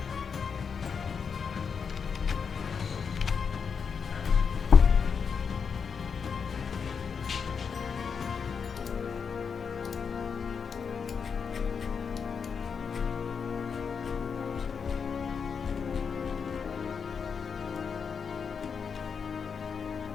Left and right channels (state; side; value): quieter; right; 6.2 dB